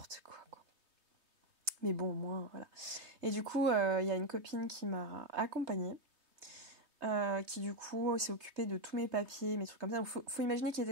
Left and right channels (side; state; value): left; late; 3.2 ms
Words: quoi. Mais bon, au moins voilà. Et du coup il y a une copine qui m'a accompagnée, qui du coup s'est occupée de tous mes papiers, mes trucs comme ça. Donc faut imaginer qu'il